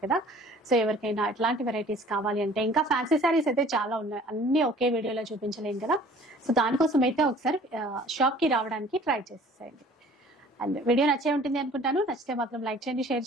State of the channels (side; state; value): both; normal; correlation 0.51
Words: కదా. సో ఎవరికైనా ఇట్లాంటి వెరైటీస్ కావాలి అంటే, ఇంకా ఫ్యాన్సీ శారీస్ అయితే చాలా ఉన్నాయి, అన్ని ఒకే వీడియోలో చూపించలేం కదా. సో దానికోసం అయితే ఒకసారి షాప్ కి రావడానికి ట్రై చేసేయండి. అండ్ వీడియో నచ్చే ఉంటుంది అనుకుంటాను. నచ్చితే మాత్రం లైక్ చేయండి, షేర్